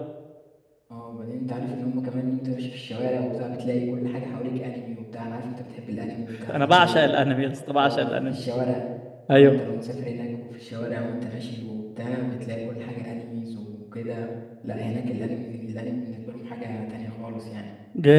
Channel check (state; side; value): identical; both; correlation 1.00